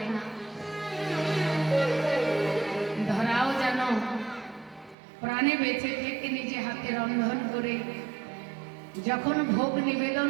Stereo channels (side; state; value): left; drops out; at 5.0 s